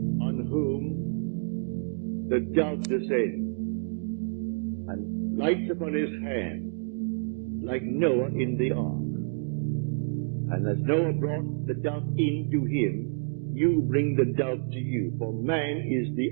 on whom the dove descends and lights upon his hand like Noah in the ark. And as Noah brought the dove into him, you bring the dove to you, for man is the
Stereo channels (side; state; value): left; silent; 59 dB below the other